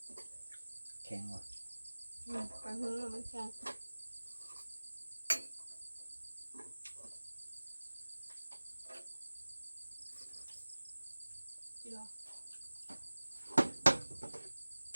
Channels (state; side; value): inverted; both; correlation -1.00